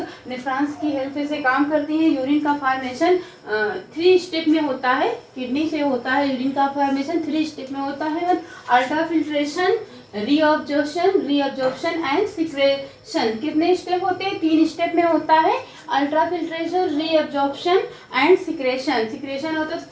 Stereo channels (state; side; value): identical; both; correlation 1.00